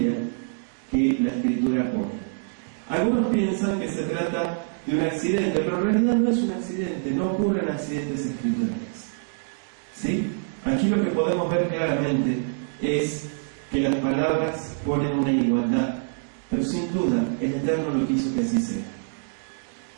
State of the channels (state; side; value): silent; left; digital silence